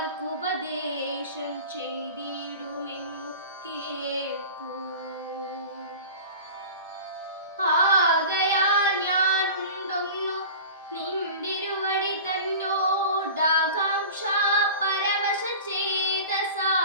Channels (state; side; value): inverted; both; correlation -0.36